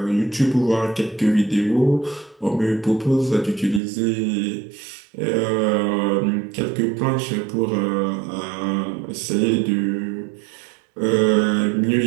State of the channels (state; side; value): drops out; left; at 3.8 s